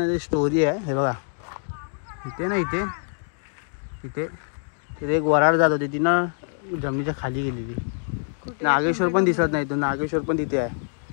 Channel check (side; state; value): right; silent; 62 dB below the other